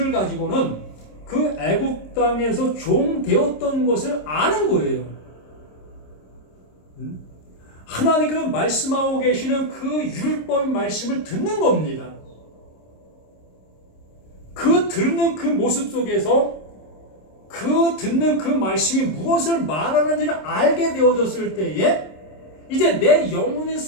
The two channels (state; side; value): late; right; 26 ms